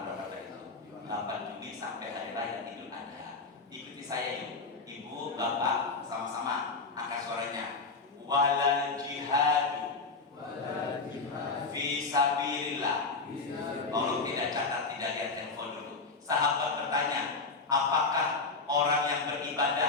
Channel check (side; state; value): right; quieter; 4.0 dB